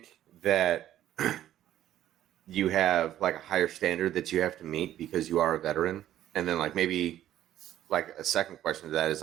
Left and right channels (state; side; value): quieter; left; 12.3 dB